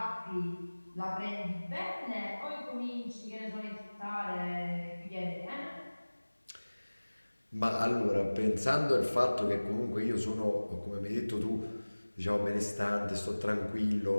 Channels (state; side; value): inverted; both; correlation -1.00